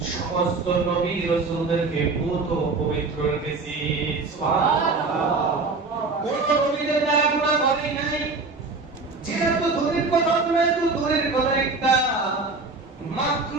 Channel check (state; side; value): quieter; left; 3.9 dB